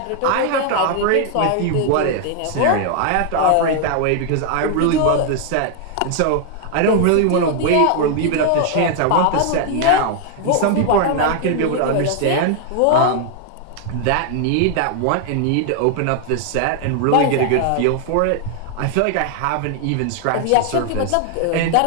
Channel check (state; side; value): different; both; correlation 0.00